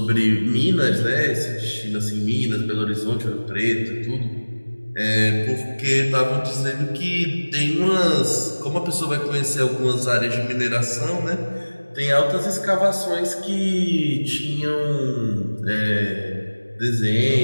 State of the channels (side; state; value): both; inverted; correlation -1.00